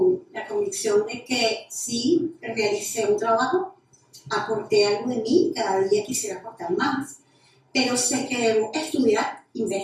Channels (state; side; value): identical; both; correlation 1.00